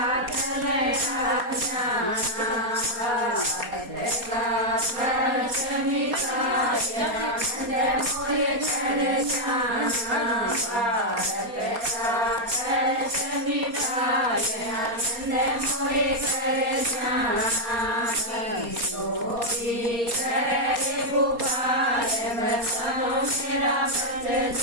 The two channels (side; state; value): left; late; 4.2 ms